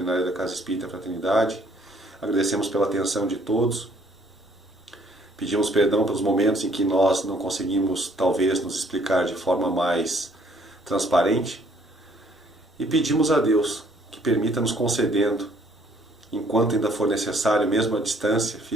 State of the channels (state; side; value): normal; both; correlation 0.63